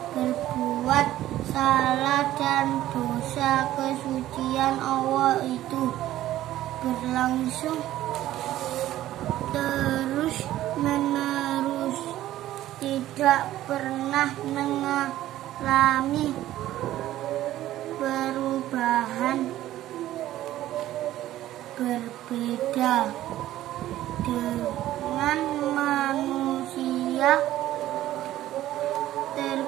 berbuat salah dan dosa. Kesucian Allah itu berlangsung terus menerus, tidak pernah mengalami perubahan. Berbeda dengan manusia,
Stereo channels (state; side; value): quieter; left; 14.0 dB